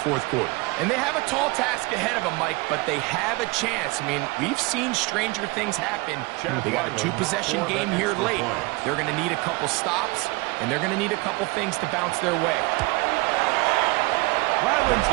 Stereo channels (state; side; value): quieter; left; 24.7 dB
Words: quarter. And they have a tall task ahead of them, Mike, but they have a chance. I mean, we've seen stranger things happen. They got a 2-possession game here late. They're going to need a couple stops, and they're going to need a couple things to bounce their way. Ryland's